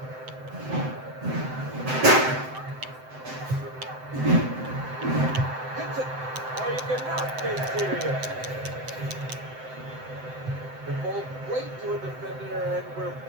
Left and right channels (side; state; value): left; late; 7.8 ms